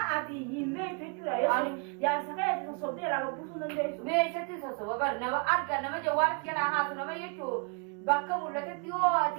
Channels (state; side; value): quieter; left; 34.5 dB